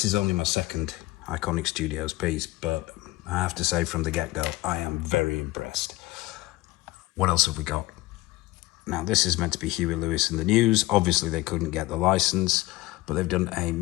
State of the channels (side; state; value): right; quieter; 19.4 dB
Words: is only my second Iconiq Studios piece, but I have to say from the get-go, I am very impressed. What else have we got? Now, this is meant to be Huey Lewis in the News. Obviously, they couldn't get the license, but they've done a